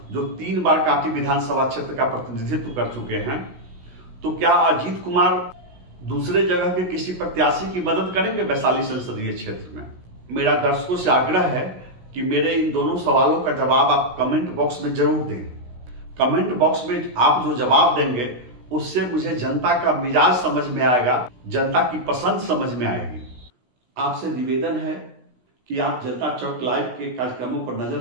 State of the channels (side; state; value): left; late; 16 ms